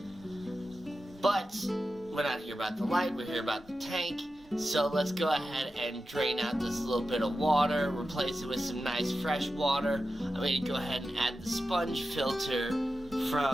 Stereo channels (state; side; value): normal; both; correlation 0.92